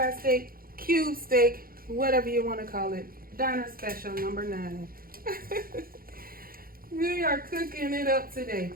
steak, cube steak, whatever you wanna call it. Diner special number 9. We are cooking it up today.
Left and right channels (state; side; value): late; left; 0.42 ms